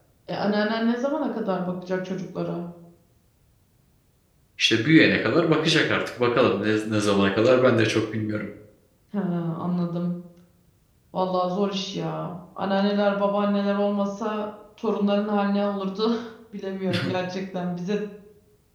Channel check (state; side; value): identical; both; correlation 1.00